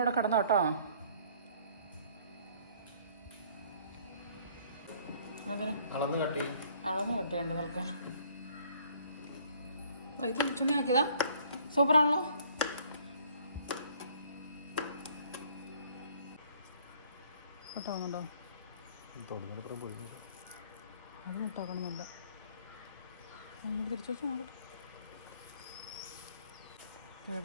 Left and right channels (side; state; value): both; inverted; correlation -0.58